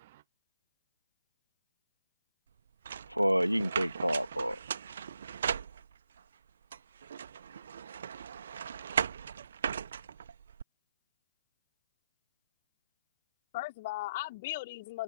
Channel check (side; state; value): both; inverted; correlation -0.85